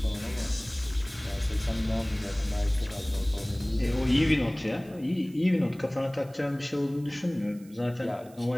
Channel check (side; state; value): right; noise; hiss, 26 dB below the sound